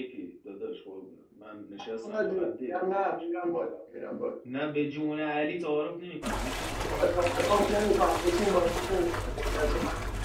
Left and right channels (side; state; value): both; identical; correlation 1.00